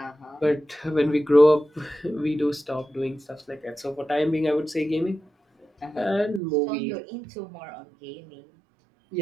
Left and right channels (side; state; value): left; drops out; at 6.4 s